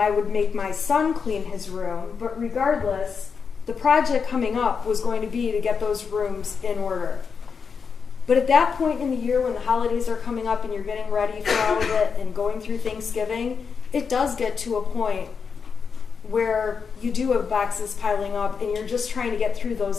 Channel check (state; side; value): quieter; right; 5.8 dB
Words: would make my son clean his room, but regardless, the project coming up was going to be to get those rooms in order. But at that point in the year when the holidays are coming up and you're getting ready for all of it and going through Thanksgiving, it does get to a point where you do have boxes piling up and you're just trying to get through